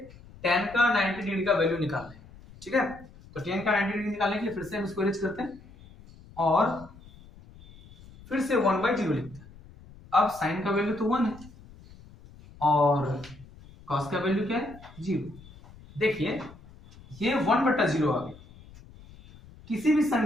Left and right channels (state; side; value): noise; left; rumble, 21 dB below the sound